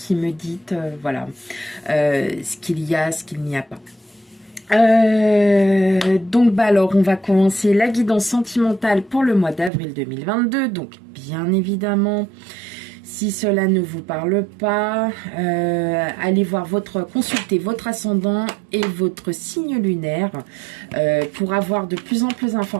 me dites voilà ce qu'il y a, ce qu'il n'y a pas. Donc bah alors on va commencer la guidance sentimentale pour le mois d'avril 2022. Donc bien évidemment, si cela ne vous parle pas, allez voir consulter votre ascendant et votre signe lunaire pour avoir de plus en plus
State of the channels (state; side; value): drops out; left; at 9.7 s